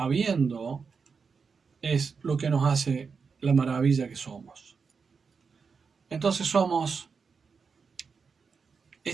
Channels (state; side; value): quieter; left; 5.4 dB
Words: es lo que nos hace la maravilla que somos. Entonces somos